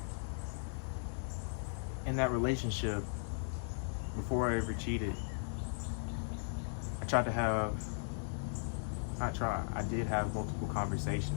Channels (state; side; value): silent; right; 53 dB below the other